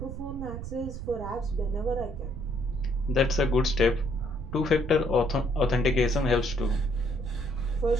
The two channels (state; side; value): noise; right; rumble, 8 dB below the sound